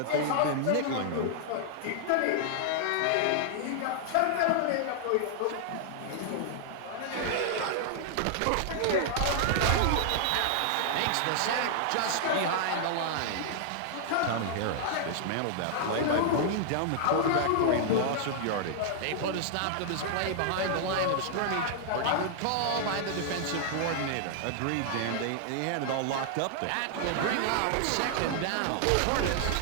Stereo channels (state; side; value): different; both; correlation -0.01